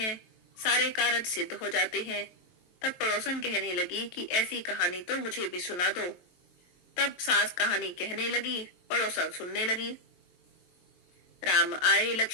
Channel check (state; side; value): late; right; 23 ms